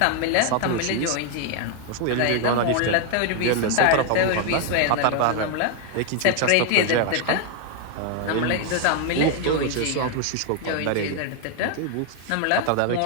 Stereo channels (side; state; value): both; different; correlation 0.00